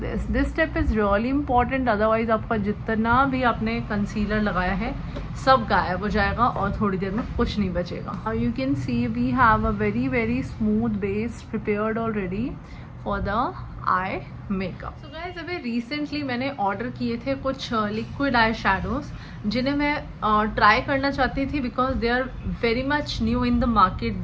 this. This step is really important, otherwise आपका जितना भी आपने concealer लगाया है सब गायब हो जाएगा और थोड़ी देर में कुछ नहीं बचेगा. You can see we have a very smooth base prepared already for the eye makeup. So guys, अभी रिसेंटली मैंने ऑर्डर किए थे कुछ लिक्विड आई शैडोज जिन्हें मैं ट्राई करना चाहती थी because they are very much new in the market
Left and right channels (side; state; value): both; identical; correlation 1.00